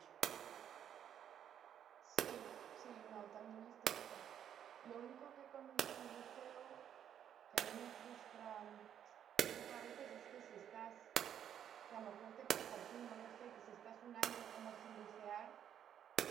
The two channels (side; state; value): left; quieter; 9.5 dB